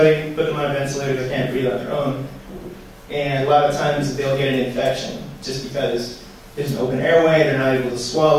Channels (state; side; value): identical; both; correlation 1.00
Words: put them on a ventilator, they can't breathe on their own. And a lot of times they'll get an infection just because there's an open airway, they're not able to